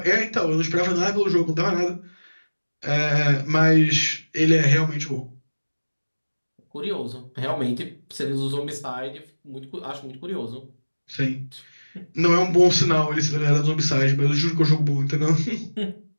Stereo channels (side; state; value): both; inverted; correlation -1.00